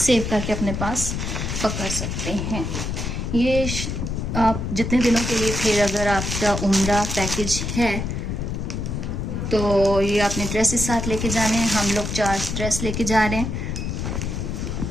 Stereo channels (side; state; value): left; noise; rumble, 3 dB below the sound